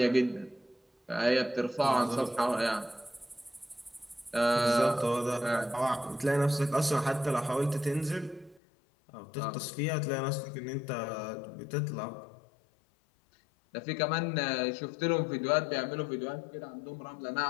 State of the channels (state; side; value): drops out; right; at 8.6 s